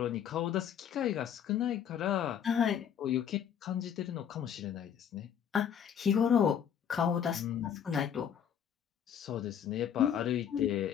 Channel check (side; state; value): right; quieter; 8.7 dB